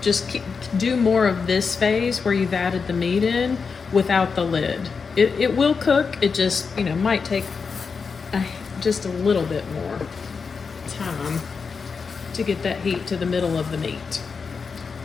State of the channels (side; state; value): right; quieter; 5.3 dB